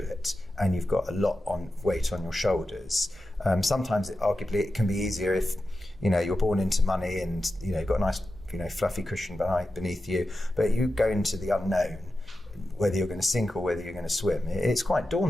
and you've got a lot on weight on your shoulders. Sometimes arguably it can be easier if you're born into money and you've got a nice fluffy cushion beneath you, but you go into the unknown, whether you're going to sink or whether you're going to swim. It's quite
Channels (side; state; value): both; normal; correlation 0.91